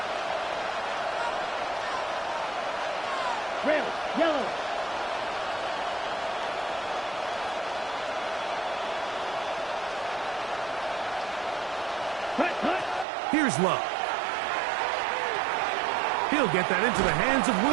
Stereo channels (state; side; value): drops out; left; at 13.1 s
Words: Red, yellow. Cut. Here's Love. He'll get that into the hands of